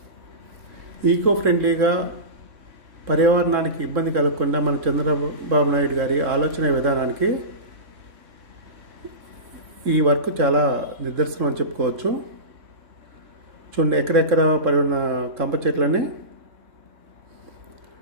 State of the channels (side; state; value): left; late; 3.7 ms